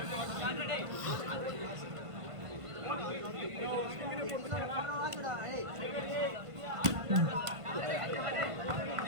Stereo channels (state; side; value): late; left; 1.5 ms